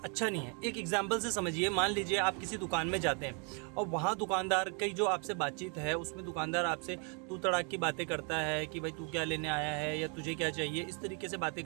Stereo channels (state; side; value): quieter; left; 36.9 dB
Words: अच्छा नहीं है, एक एग्जाम्पल से समझिए, मान लीजिए आप किसी दुकान में जाते हैं और वहाँ दुकानदार की जो आपसे बातचीत है उसमें दुकानदार आपसे तू तड़ाक की बातें करता है कि भाई तू क्या लेने आया है या तुझे क्या चाहिए, इस तरीके से बातें